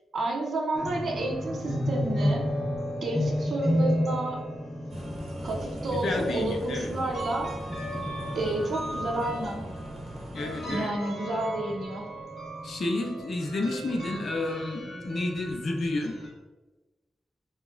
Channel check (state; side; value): normal; both; correlation 0.85